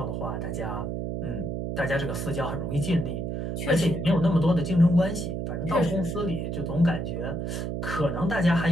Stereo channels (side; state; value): right; noise; hum, 3 dB below the sound